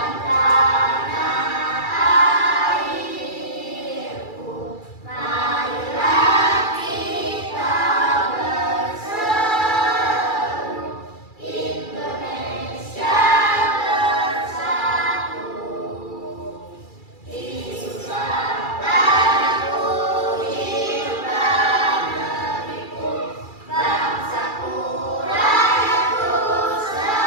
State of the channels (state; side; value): late; right; 2.3 ms